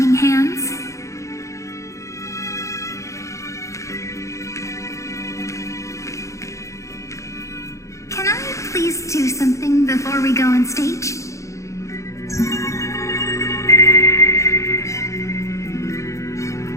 hands, please do something before we go on stage?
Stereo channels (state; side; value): late; right; 0.15 ms